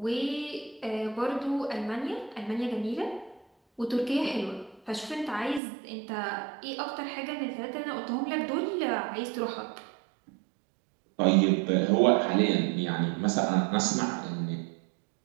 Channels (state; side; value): drops out; left; at 5.6 s